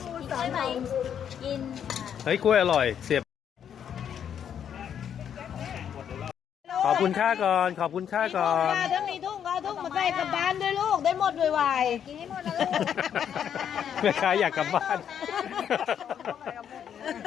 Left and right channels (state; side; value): quieter; right; 8.7 dB